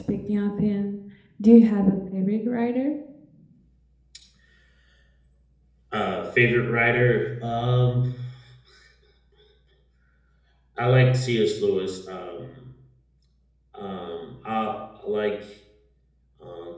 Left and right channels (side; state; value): both; identical; correlation 1.00